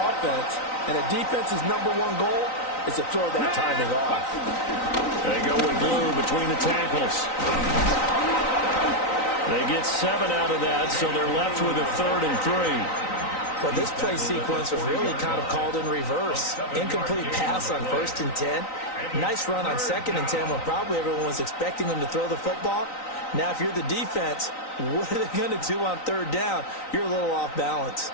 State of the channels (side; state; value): right; late; 3.9 ms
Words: and a defense's #1 goal is to throw that timing off. They go with glue between the tackles. They get 7 out of that, so they're left with a 3rd and 3. Well, this play sequence was really kind of called in reverse. Incomplete pass on 1st and 10. Nice run on 2nd and 10 when probably everyone was expecting them to throw the football. Now, if you're the defense, what are they going to do on 3rd down? You're a little off balance.